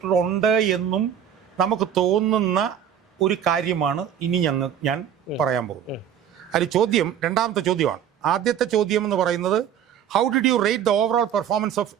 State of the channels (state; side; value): quieter; left; 9.2 dB